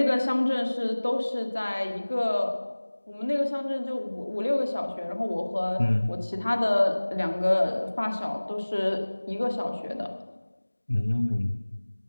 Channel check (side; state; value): both; inverted; correlation -1.00